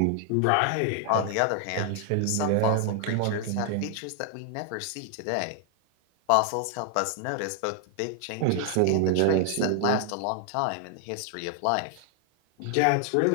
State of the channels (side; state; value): both; different; correlation 0.00